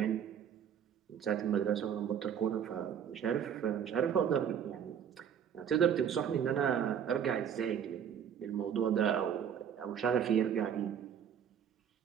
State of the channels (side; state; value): left; quieter; 8.4 dB